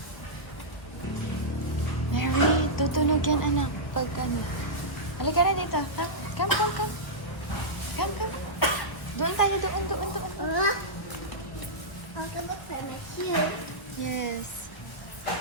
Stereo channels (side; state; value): right; late; 1.4 ms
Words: Mary, Tutunog yan, anak. Pag ano. Halika na dito. Come. Come. Doon tayo, doon. I'll go look for my cute. Yes.